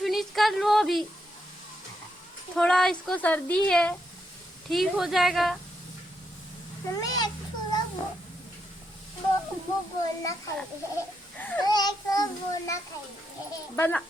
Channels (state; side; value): normal; both; correlation 0.81